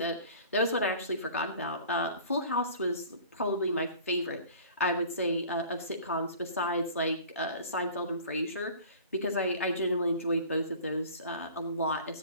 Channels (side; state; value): both; inverted; correlation -0.45